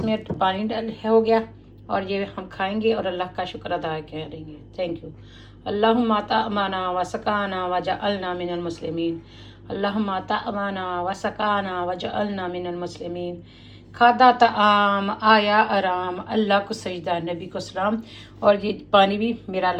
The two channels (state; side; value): identical; both; correlation 1.00